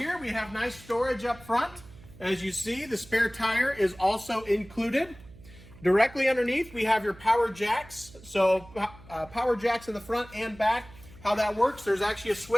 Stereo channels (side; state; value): right; noise; hum, 21 dB below the sound